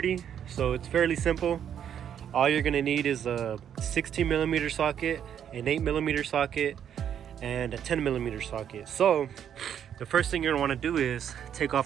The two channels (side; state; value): left; quieter; 9.1 dB